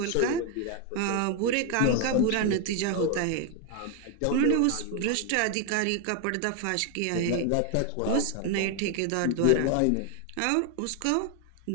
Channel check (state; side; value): different; both; correlation 0.01